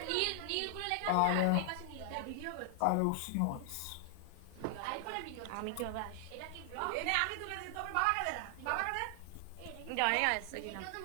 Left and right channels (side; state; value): both; different; correlation 0.00